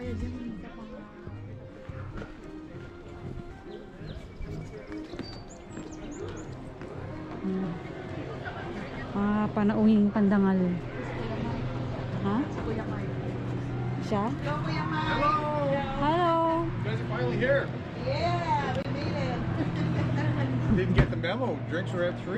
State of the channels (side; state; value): both; identical; correlation 1.00